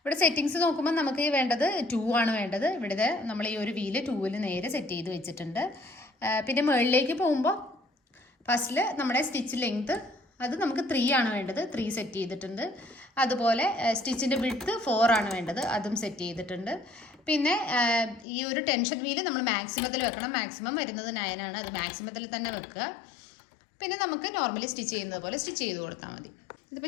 സെറ്റിങ്സ് നോക്കുമ്പോൾ നമുക്ക് വേണ്ടത് 2 ആണ് വേണ്ടത്. ഇവിടെ നമ്മൾ ഈ ഒരു വീല് 2-ൽ നേരെ സെറ്റ് ചെയ്ത് വെച്ചിട്ടുണ്ട്. പിന്നെ മുകളിലേക്ക് പോകുമ്പോൾ ഫസ്റ്റിൽ നമ്മുടെ സ്റ്റിച്ച് ലെങ്ത് അത് നമുക്ക് 3 ആണ് വേണ്ടത്, 3 സെറ്റ് ചെയ്തിട്ടുണ്ട്. അതുപോലെ സ്റ്റിച്ചിൻ്റെ വിഡ്ത്ത് 4 ആണ് വേണ്ടത്, അതും സെറ്റ് ചെയ്തിട്ടുണ്ട്. പിന്നെ ഈ ഒരു ടെൻഷൻ വീല് നമ്മൾ മാക്സിമത്തിൽ വെക്കണം. മാക്സിമം വരുന്നത് 9 ആണ്, അത് മാക്സിമത്തിൽ തന്നെ വെക്കുക. പിന്നെ നമുക്ക് നോർമലി സ്റ്റിച്ച് ചെയ്യുന്നത് പോലെ സ്റ്റിച്ച് ചെയ്ത് കൊടുത്താൽ മതി.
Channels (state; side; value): drops out; right; at 18.2 s